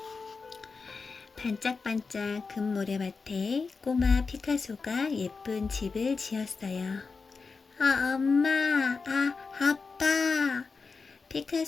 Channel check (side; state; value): right; quieter; 4.6 dB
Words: 반짝반짝 금모래밭에 꼬마 피카소가 예쁜 집을 지었어요. 엄마, 아빠.